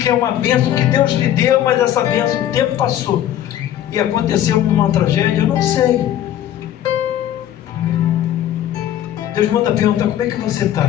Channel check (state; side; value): quieter; right; 11.7 dB